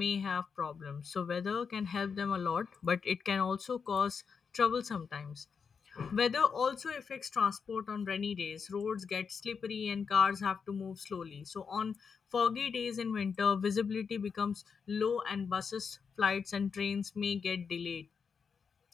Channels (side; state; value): right; quieter; 6.0 dB